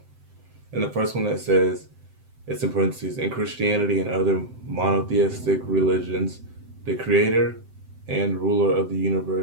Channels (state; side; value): late; left; 7.8 ms